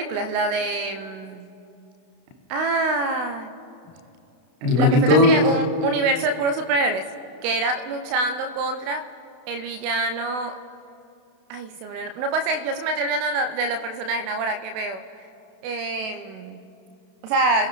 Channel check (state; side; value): late; left; 32 ms